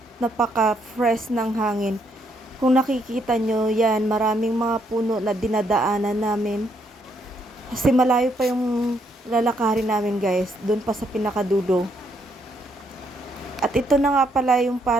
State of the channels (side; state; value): both; normal; correlation 0.73